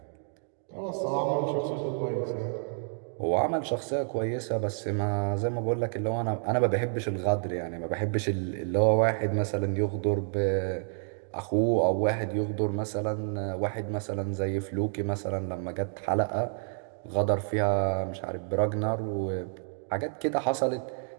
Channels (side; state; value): left; silent; digital silence